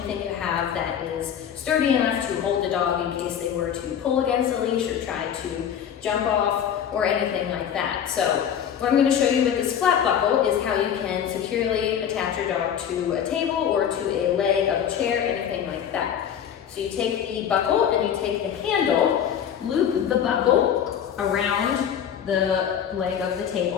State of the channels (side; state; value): right; quieter; 8.8 dB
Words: you have that is sturdy enough to hold the dog in case they were to pull against the leash or try to jump off or anything like that. So what I'm going to show you with this flat buckle is how you can securely attach your dog to a table or to a leg of a chair, anything like that. So you take the buckle and you take the handle, loop the buckle around the leg of the